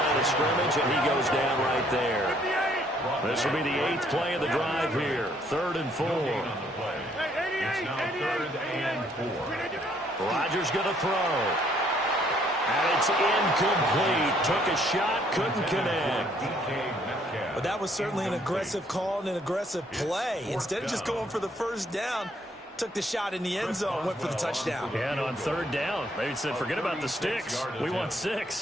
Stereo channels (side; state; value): both; normal; correlation 0.66